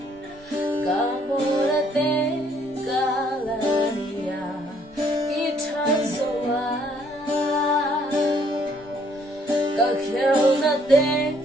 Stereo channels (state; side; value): normal; both; correlation 0.65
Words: cả mùa đã tên cả là nia ít tháng rồi cả khéo đã tên